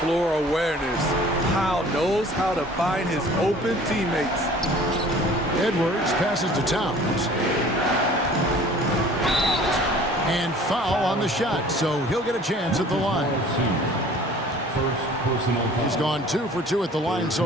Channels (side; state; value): both; normal; correlation 0.49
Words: awareness. Powell knows how to find his open teammates. Edwards passes to Towns. And foul on the shot, so he'll get a chance at the line. First personal foul. He's gone 2 for 2 at the line